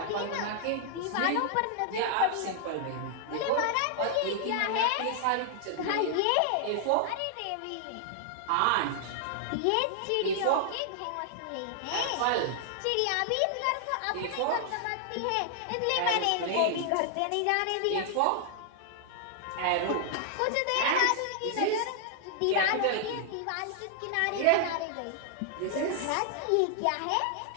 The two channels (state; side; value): different; both; correlation -0.01